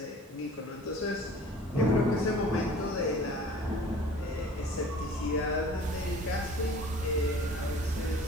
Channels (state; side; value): normal; both; correlation 0.47